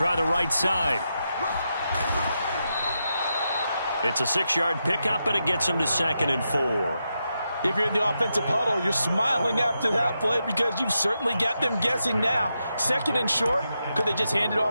the right side. It's a 6-yard pickup, and it gets him to 2nd and 4. If you're in the offensive huddle, you're smiling after that play because you've certainly got them guessing now. 2nd and short, could they just hand it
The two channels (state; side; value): inverted; both; correlation -0.86